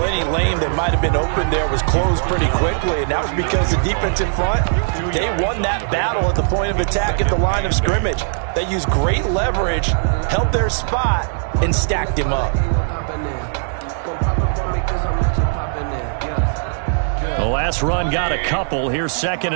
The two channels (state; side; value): silent; left; digital silence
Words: any lane that might have been open there was closed pretty quickly, and that was because the defense in front, they won that battle at the point of attack at the line of scrimmage. They used great leverage, held their spot, and stacked him up. The last run got a couple. Here's 2nd